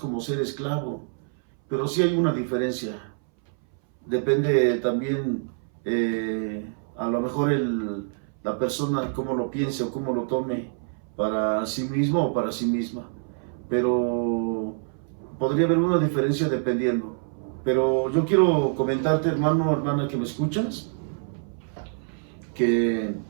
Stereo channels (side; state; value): left; silent; 61 dB below the other